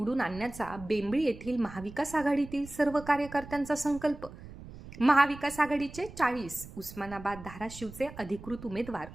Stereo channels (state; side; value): noise; right; rumble, 15 dB below the sound